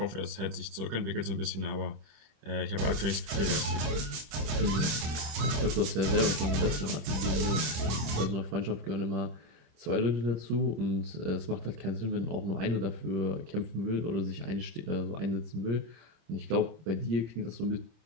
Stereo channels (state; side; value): late; left; 26 ms